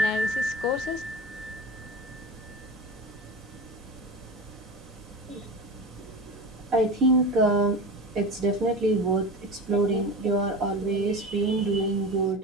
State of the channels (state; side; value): normal; both; correlation 0.29